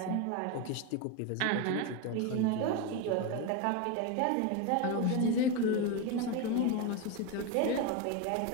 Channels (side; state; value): both; different; correlation 0.03